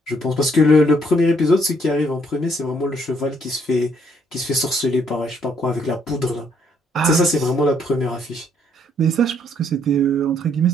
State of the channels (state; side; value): normal; both; correlation 0.69